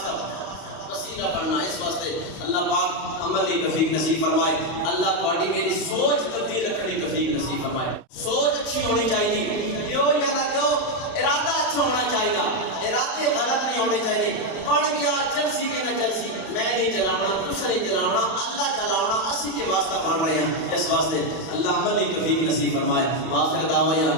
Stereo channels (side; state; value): right; late; 32 ms